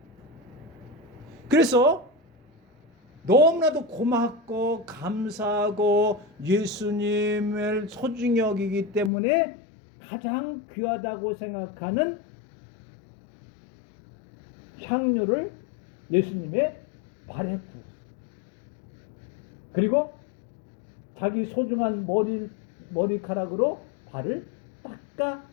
그래서 너무나도 고맙고 감사하고 예수님을 소중히 여기기 때문에 가장 귀하다고 생각하는 향료를 예수님의 발에 부었어요. 그리고 자기 소중한 머리카락으로 발을 닦아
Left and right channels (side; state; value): right; drops out; at 9.1 s